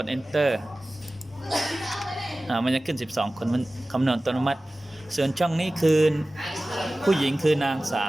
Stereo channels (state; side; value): normal; both; correlation 0.97